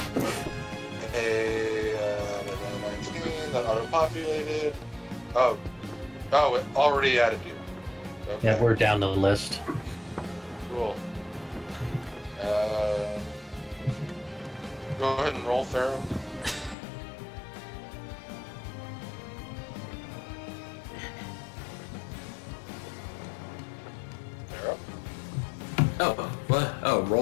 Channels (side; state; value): right; drops out; at 16.8 s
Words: a 19 that auto-populated. Oh, it already added you. Okay. Yeah, we're down the list. Cool. Go ahead and roll, Farum. Farum? Oh, what? Oh,